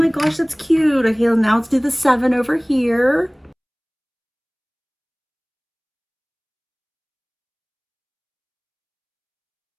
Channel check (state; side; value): identical; both; correlation 1.00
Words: gosh, that's cute. Okay, now let's do the 7 over here.